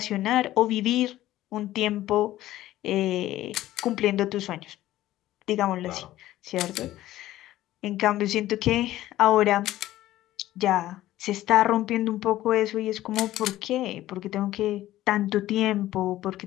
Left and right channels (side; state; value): right; quieter; 14.7 dB